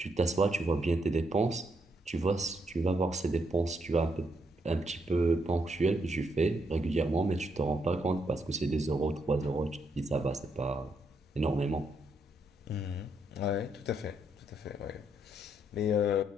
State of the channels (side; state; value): both; normal; correlation 0.76